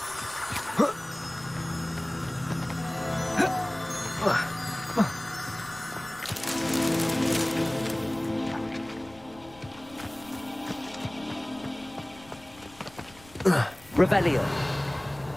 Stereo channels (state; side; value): noise; left; rumble, 23 dB below the sound